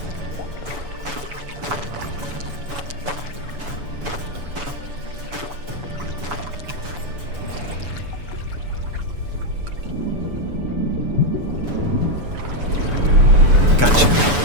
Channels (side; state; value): left; late; 7.0 ms